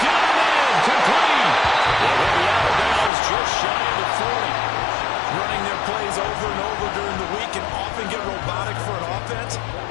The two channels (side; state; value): right; drops out; at 3.1 s